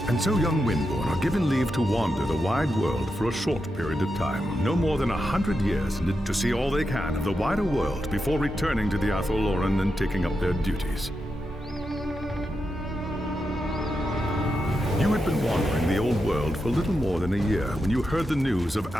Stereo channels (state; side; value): normal; both; correlation 0.87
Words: And so young Windborn are given leave to wander the wide world for a short period of time, no more than 100 years, to see all they can of the wider world before returning to the Athelloren and taking up their duties. You had been wandering the old world for little more than a year when you heard the news of